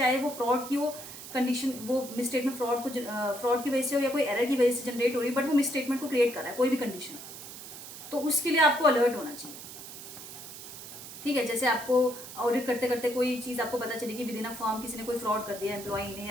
वो फ्रॉड की हो कंडीशन, वो मिसस्टेटमेंट फ्रॉड की वजह से हो या कोई एरर की वजह से जनरेट हो रही है, बट वो मिसस्टेटमेंट को क्रिएट कर रहा है कोई भी कंडीशन, तो उसके लिए आपको अलर्ट होना चाहिए, ठीक है। जैसे आपको ऑडिट करते करते कोई चीज़ आपको पता चली कि विद इन अ फर्म किसी ने कोई फ्रॉड कर दिया, एम्प्लॉई ने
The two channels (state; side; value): noise; right; hiss, 12 dB below the sound